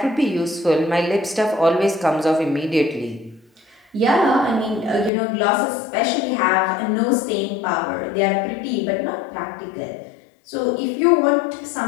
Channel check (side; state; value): right; drops out; at 5.1 s